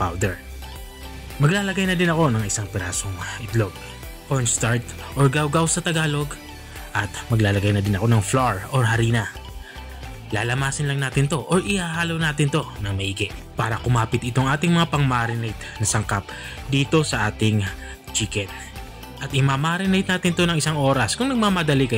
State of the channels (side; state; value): both; identical; correlation 1.00